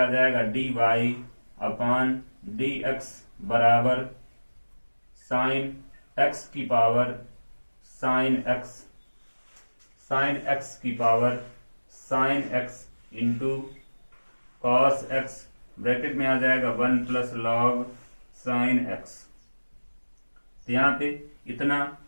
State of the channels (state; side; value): inverted; both; correlation -1.00